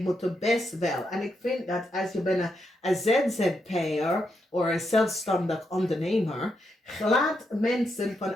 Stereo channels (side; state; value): both; normal; correlation 0.82